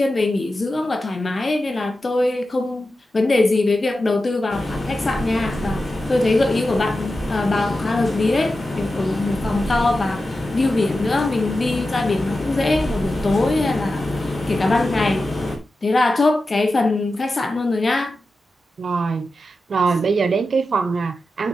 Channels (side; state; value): both; normal; correlation 0.92